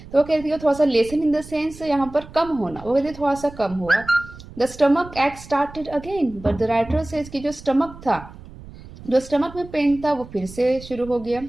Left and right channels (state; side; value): noise; right; rumble, 17 dB below the sound